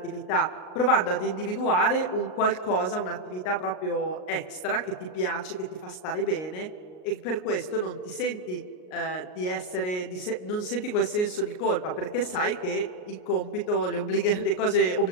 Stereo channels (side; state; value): right; late; 38 ms